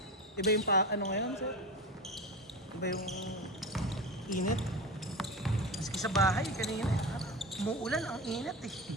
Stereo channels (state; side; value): normal; both; correlation 0.25